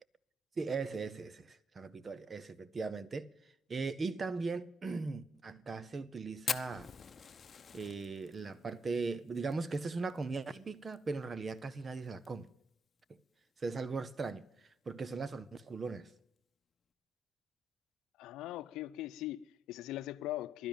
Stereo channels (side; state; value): both; normal; correlation 0.79